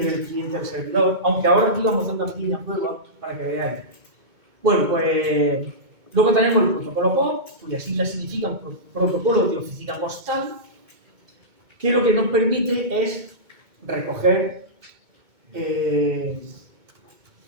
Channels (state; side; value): late; left; 2.2 ms